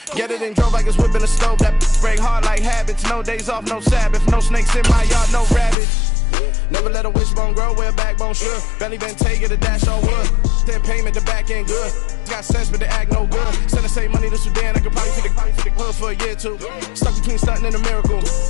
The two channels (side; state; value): right; drops out; at 5.8 s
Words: Get it and drove like it's whipping a stove. That break hard like habits. No days off, no Sabbath. No snakes in my yard, no rabbits. Never let a wishbone grow where a backbone should. Belly been taking the dash on wood. Then payment, the back end good. Got sense, but they act no good. Send the same money to Sudan. I could probably feed the hood for a year or two. Stuck between stunting and a miracle.